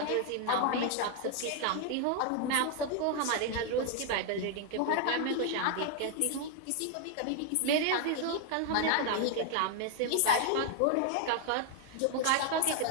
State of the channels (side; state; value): both; different; correlation 0.00